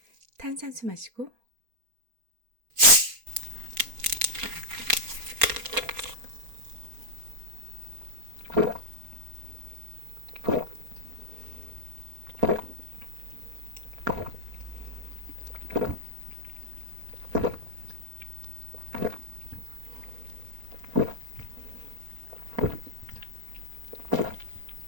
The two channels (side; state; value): left; late; 4.3 ms